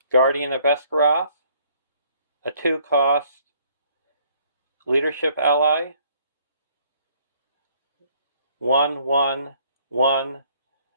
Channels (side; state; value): both; inverted; correlation -0.62